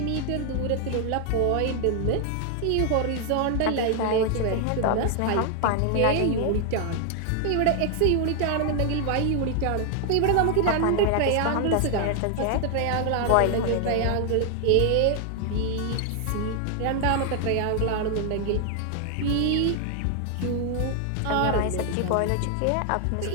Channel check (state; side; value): different; both; correlation 0.00